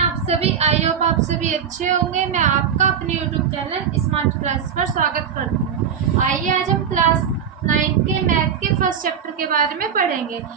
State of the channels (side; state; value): left; quieter; 7.7 dB